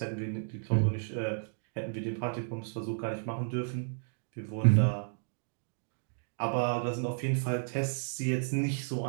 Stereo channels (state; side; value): silent; left; digital silence